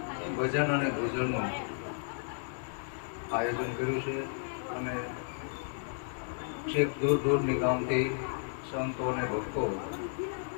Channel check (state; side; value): silent; right; digital silence